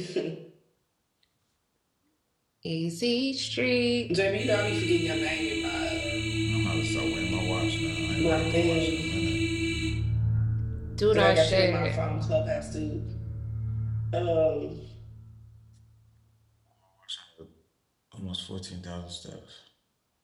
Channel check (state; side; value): identical; both; correlation 1.00